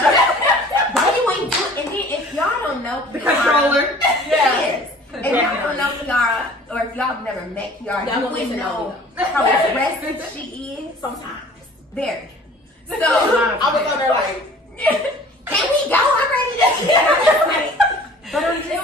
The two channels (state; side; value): normal; both; correlation 0.48